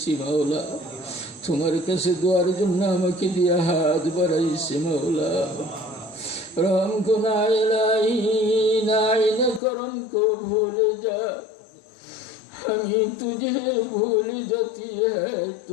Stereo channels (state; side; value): drops out; right; at 9.6 s